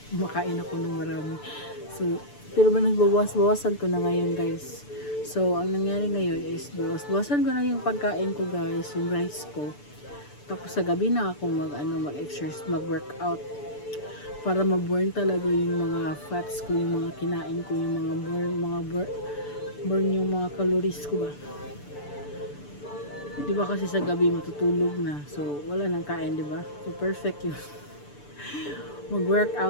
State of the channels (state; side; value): late; right; 6.8 ms